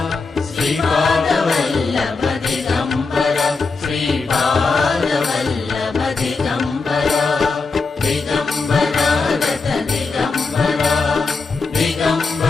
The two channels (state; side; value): quieter; right; 4.2 dB